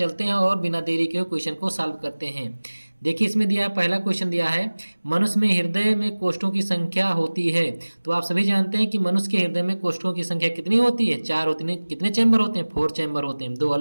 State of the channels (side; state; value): both; inverted; correlation -1.00